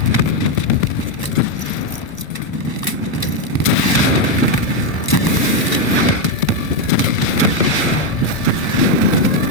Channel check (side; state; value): right; late; 1.0 ms